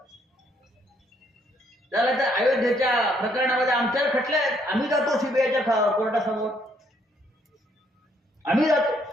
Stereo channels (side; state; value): both; normal; correlation 0.69